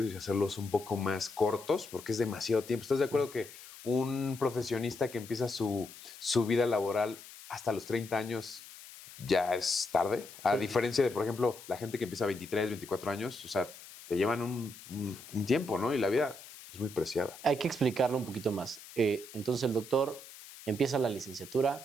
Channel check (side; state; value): left; noise; hiss, 17 dB below the sound